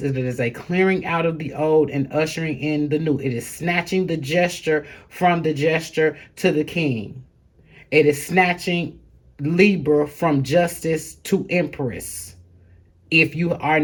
it is a clearing out of the old and ushering in the new. It is snatching the gesture from the gesture to the king. It is snatching Libra from justice to Empress, if you are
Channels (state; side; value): identical; both; correlation 1.00